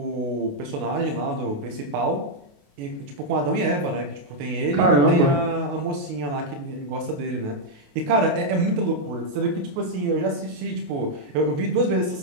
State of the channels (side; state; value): left; late; 28 ms